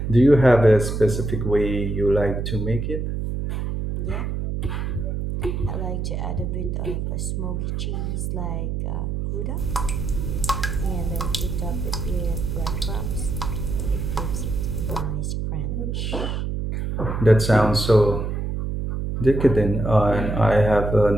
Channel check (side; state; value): right; noise; hum, 2 dB below the sound